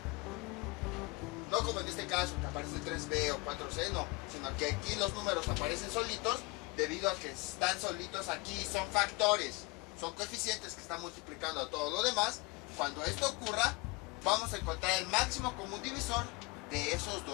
No como en este caso que aparece 3b o 4c, no, sino que aquí los números aparecen solitos debido a que están solitos aquí, son factores, son coeficientes que están multiplicando a todo lo demás. Cuando esto ocurra, vamos a encontrar el máximo común divisor de esos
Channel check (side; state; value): right; quieter; 25.1 dB